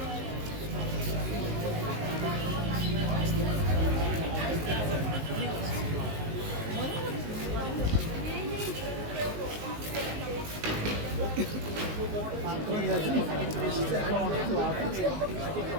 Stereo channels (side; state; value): left; late; 19 ms